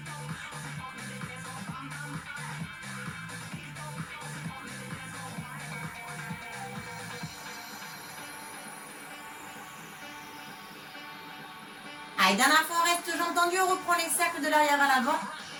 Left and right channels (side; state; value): both; identical; correlation 1.00